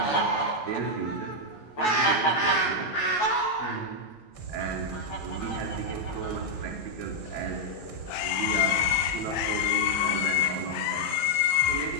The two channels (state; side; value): late; right; 14 ms